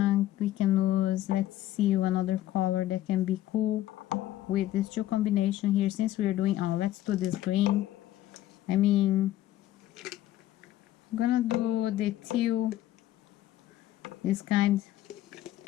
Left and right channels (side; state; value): right; quieter; 13.8 dB